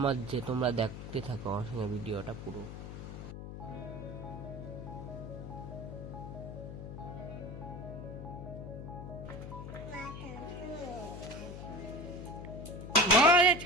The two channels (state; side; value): noise; left; hum, 9 dB below the sound